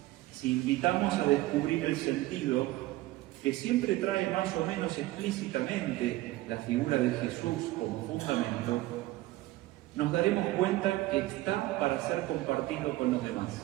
Si invitamos a descubrir el sentido, que siempre trae más o menos explícitamente la figura de Jesús como fundamento, nos daremos cuenta que está para ser compartido con los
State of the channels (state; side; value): quieter; left; 17.6 dB